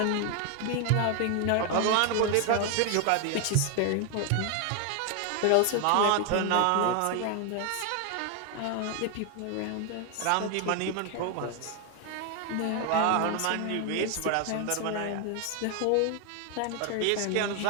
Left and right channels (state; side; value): different; both; correlation 0.00